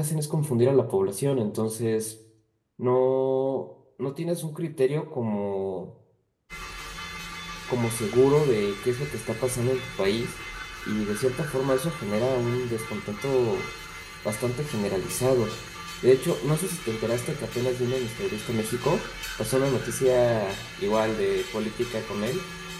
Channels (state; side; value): identical; both; correlation 1.00